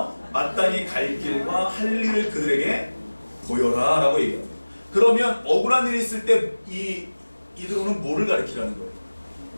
마땅히 갈 길과 할 일을 그들에게 보여라 라고 얘기합니다. 그러면 억울한 일이 있을 때 이 이드로는 뭐를 가르치라는 거예요?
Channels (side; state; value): both; inverted; correlation -1.00